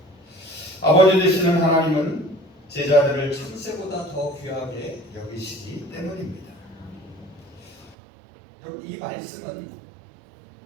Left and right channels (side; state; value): left; drops out; at 8.0 s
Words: 아버지 되시는 하나님은 제자들을 참새보다 더 귀하게 여기시기 때문입니다. 여러분, 이 말씀은